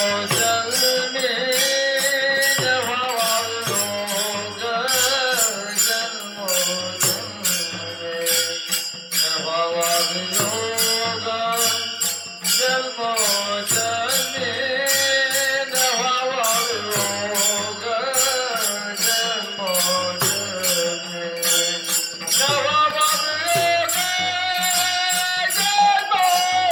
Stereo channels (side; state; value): both; identical; correlation 1.00